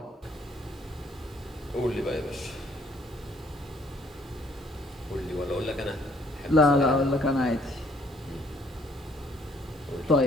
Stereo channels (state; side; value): normal; both; correlation 0.63